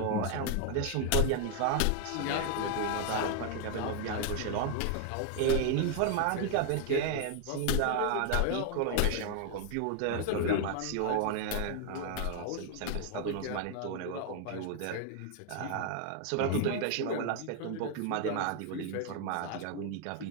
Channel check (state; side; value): different; both; correlation 0.00